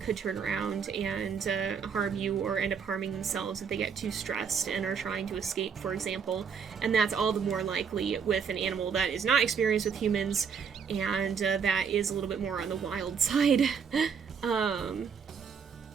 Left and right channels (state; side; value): quieter; left; 6.5 dB